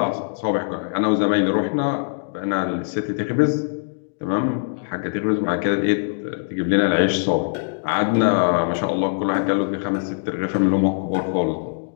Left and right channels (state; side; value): silent; right; digital silence